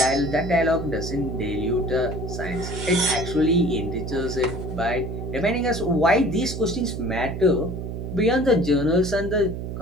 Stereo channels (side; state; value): right; noise; hum, 6 dB below the sound